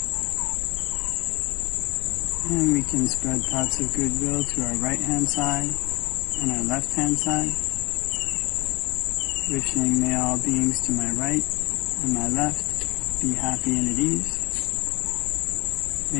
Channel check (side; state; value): right; quieter; 23.6 dB